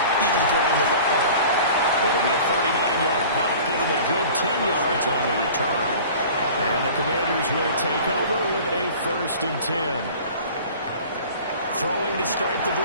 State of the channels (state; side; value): inverted; both; correlation -0.43